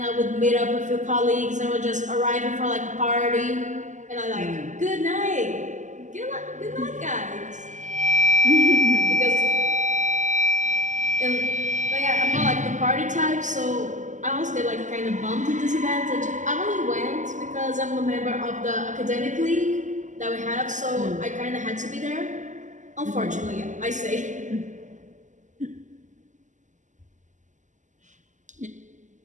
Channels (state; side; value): late; left; 0.36 ms